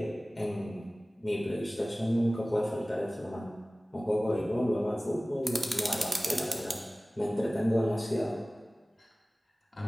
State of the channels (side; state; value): both; normal; correlation 0.98